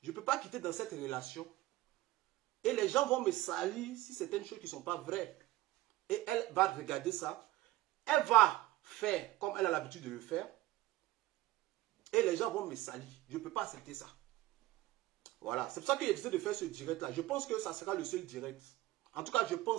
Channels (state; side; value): quieter; left; 16.9 dB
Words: Je ne peux pas quitter dans cette relation Et les gens vont me salir si certaines choses qui ne sont pas vraies. Et elle va regarder ça. Elle va faire comme elle a l'habitude de le faire. Et les gens vont me salir. Je ne peux pas accepter ça. Voilà. C'est pour ça que j'ai décidé de faire ce direct-là. Je pense que ça sera le seul direct. En tout cas, je